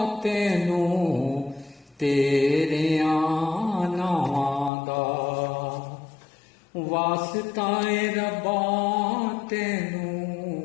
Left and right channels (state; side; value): drops out; right; at 4.7 s